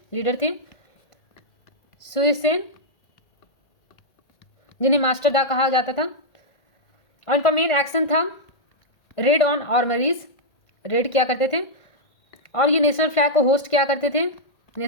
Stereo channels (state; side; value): late; right; 1.8 ms